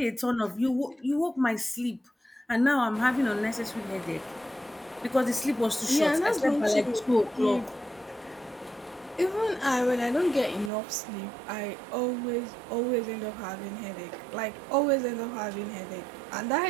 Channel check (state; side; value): drops out; left; at 10.7 s